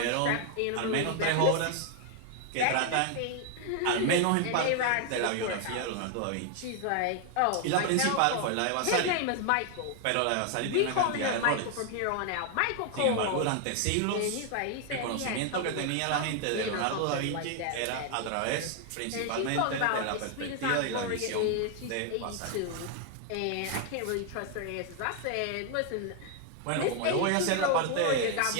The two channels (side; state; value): both; different; correlation 0.00